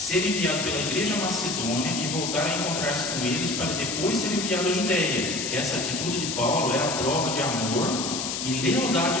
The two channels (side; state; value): left; noise; hiss, 3 dB below the sound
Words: enviado pela igreja macedônia e voltar a encontrar-se com eles para depois ser enviado à Judeia. Essa atitude de Paulo era prova de amor e